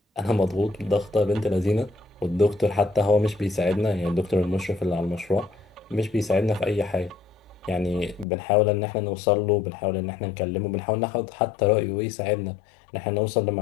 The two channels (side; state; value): right; drops out; at 8.2 s